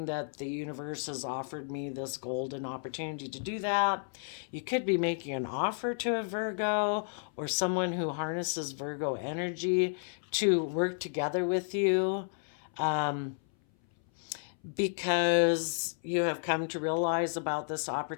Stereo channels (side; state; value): right; silent; 56 dB below the other